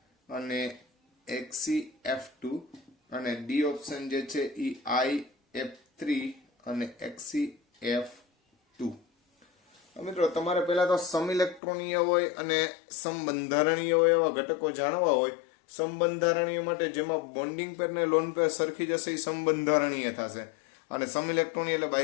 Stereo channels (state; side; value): drops out; right; at 11.6 s